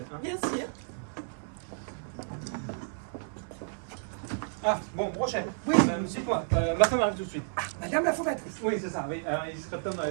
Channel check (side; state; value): left; silent; 57 dB below the other